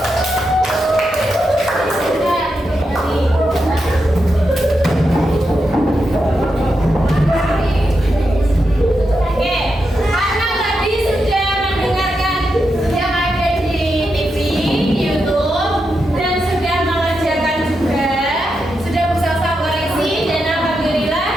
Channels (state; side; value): normal; both; correlation 0.86